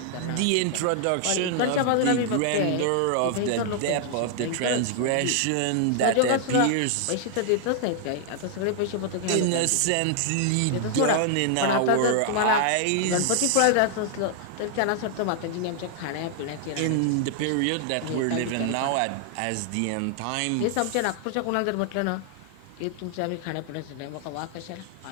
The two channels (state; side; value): different; both; correlation 0.00